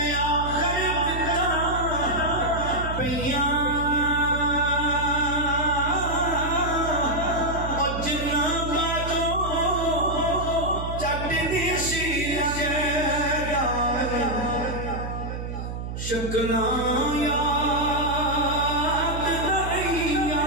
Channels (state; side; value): noise; right; hum, 6 dB below the sound